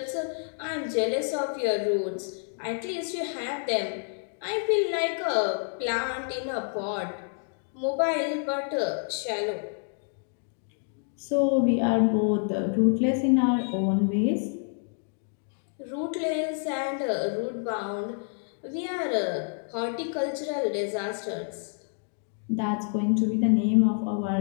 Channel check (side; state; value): right; silent; 59 dB below the other